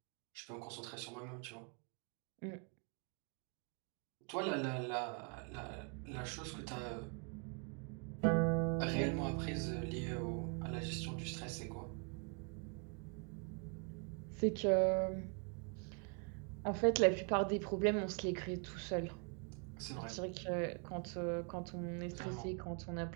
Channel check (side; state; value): left; quieter; 39.3 dB